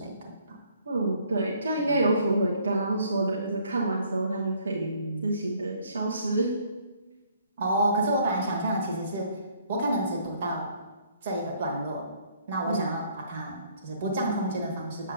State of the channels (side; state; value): both; inverted; correlation -0.62